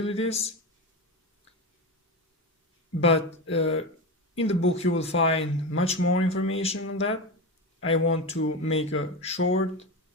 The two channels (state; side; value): normal; both; correlation 0.20